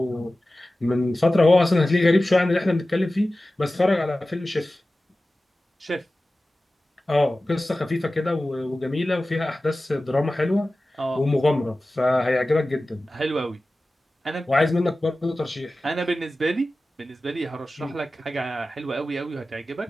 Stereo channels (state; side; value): normal; both; correlation 0.96